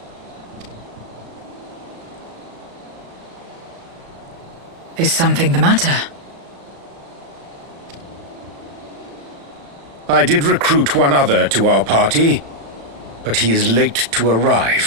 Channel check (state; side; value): late; left; 35 ms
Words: Is something the matter? I did recruit one other to our party, but he is late to